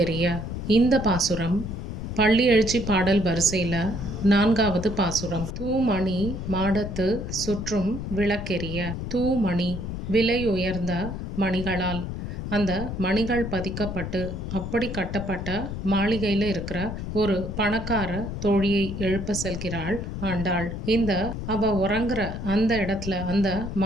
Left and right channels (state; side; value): noise; left; rumble, 6 dB below the sound